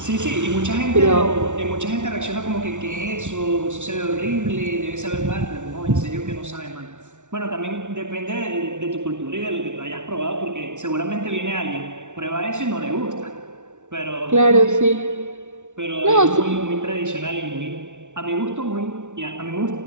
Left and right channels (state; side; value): late; left; 0.85 ms